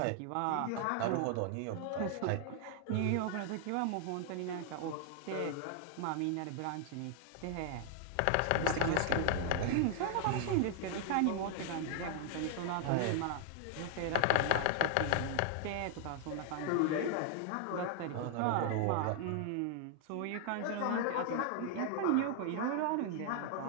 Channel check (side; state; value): both; different; correlation 0.00